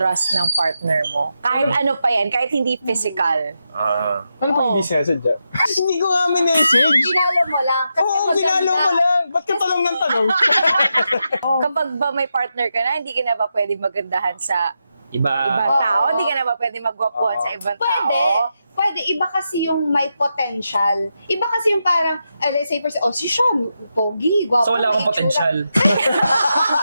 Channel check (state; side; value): inverted; both; correlation -0.86